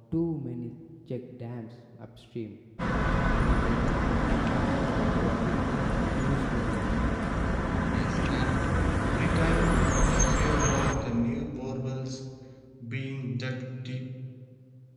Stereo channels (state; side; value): identical; both; correlation 1.00